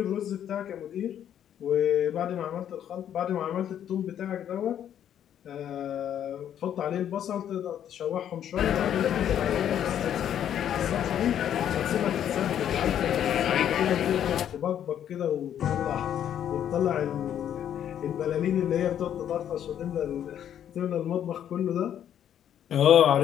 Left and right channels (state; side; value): quieter; right; 10.0 dB